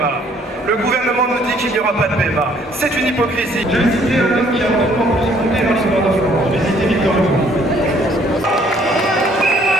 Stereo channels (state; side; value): normal; both; correlation 0.62